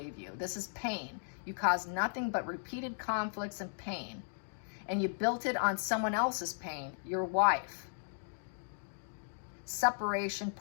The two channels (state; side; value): silent; right; digital silence